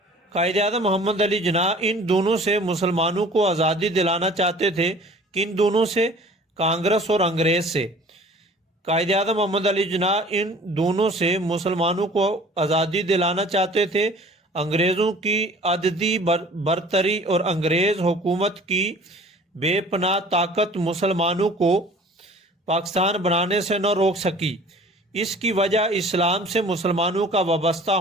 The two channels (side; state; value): both; normal; correlation 0.48